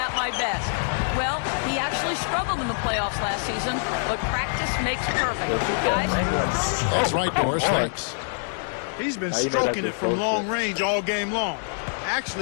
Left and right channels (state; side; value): silent; right; digital silence